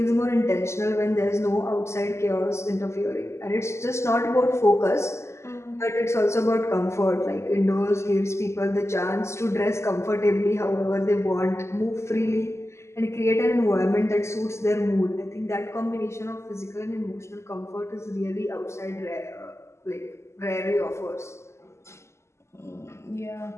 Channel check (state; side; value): late; right; 0.13 ms